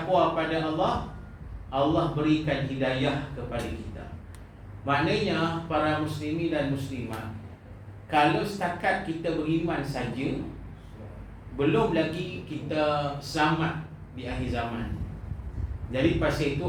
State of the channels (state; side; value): identical; both; correlation 1.00